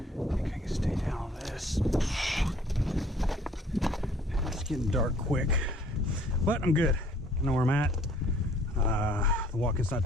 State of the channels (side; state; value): both; normal; correlation 0.58